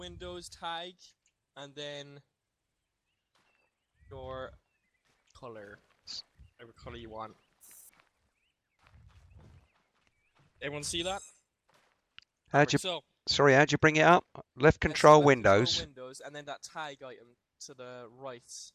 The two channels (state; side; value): identical; both; correlation 1.00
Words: tag, and then your color. Whatever color you want. Everyone see that? How'd you? So, Sorry, how'd you bring it up? Left yes, control left Windows. Control Windows, and then that tag item to the right.